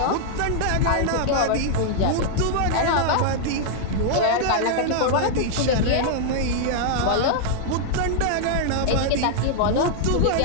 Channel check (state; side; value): different; both; correlation -0.01